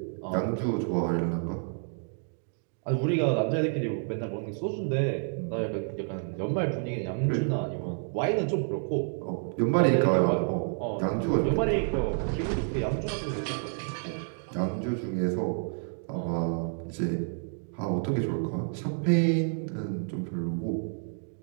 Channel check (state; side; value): silent; left; 58 dB below the other